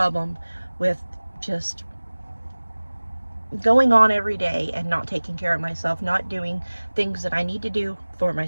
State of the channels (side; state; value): both; inverted; correlation -1.00